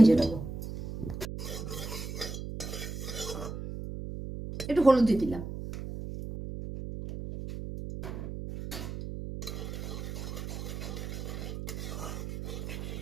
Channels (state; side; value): noise; right; hum, 7 dB below the sound